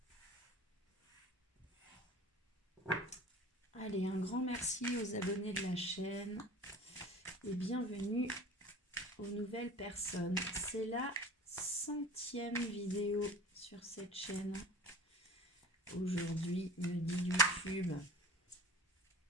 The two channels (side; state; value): both; normal; correlation 0.40